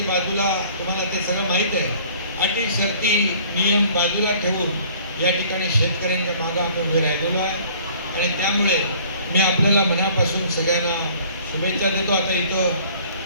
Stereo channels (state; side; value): inverted; both; correlation -0.53